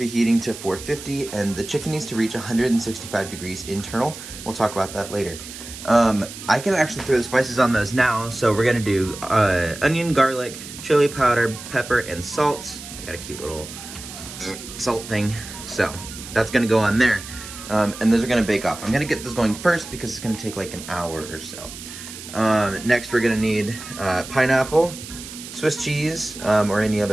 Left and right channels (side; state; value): right; noise; hiss, 12 dB below the sound